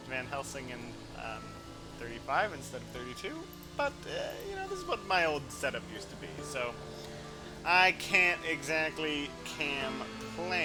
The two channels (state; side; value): identical; both; correlation 1.00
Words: Van Helsing in 35 instead of 32. But, this is what my old setup used to be, so I can't exactly